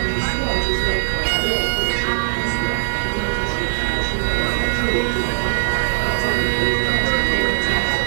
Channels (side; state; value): left; silent; digital silence